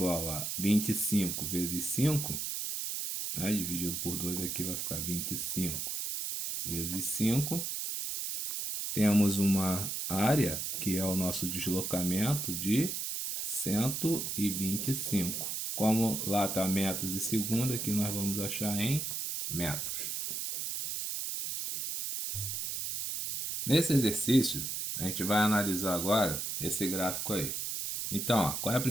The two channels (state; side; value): noise; right; hiss, 3 dB below the sound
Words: a 25 vezes 5, né? Dividido por 2 aqui vai ficar 25 vezes 5. Temos uma área, que é o nosso deslocamento, de 125. Como lá está metros e segundo, aqui nós vamos achar em metros. Nesse exercício, a gente vai analisar agora esse gráfico aí. Então, ó, qual é a